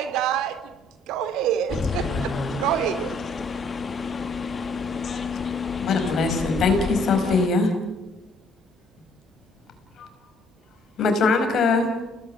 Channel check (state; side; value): normal; both; correlation 0.62